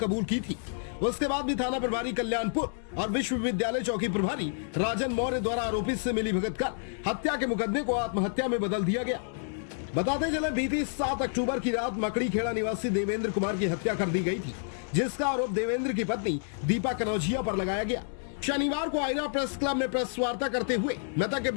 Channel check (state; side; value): silent; right; digital silence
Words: की थी। उसके बाद भी थाना प्रभारी कल्याणपुर और विश्वविद्यालय चौकी प्रभारी राजन मौर्य द्वारा आरोपी से मिलीभगत कर हत्या के मुकदमे को आत्महत्या में बदल दिया गया। बताते चले बीती 7 अक्टूबर की रात मकड़ी खेड़ा निवासी देवेंद्र कुमार की हत्या कर दी गई थी, जिसका आरोप देवेंद्र की पत्नी दीपा कनौजिया पर लगाया गया। शनिवार को आयरा प्रेस क्लब में प्रेस वार्ता करते हुए मृतक के